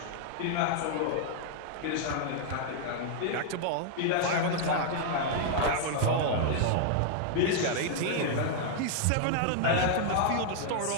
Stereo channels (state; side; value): different; both; correlation 0.00